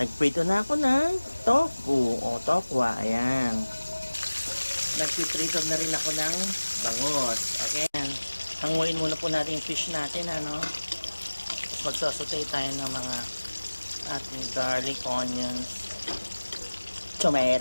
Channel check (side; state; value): both; inverted; correlation -1.00